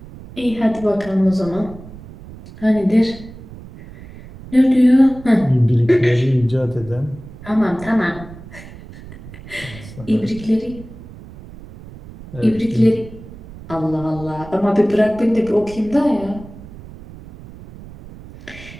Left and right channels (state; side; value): noise; right; rumble, 17 dB below the sound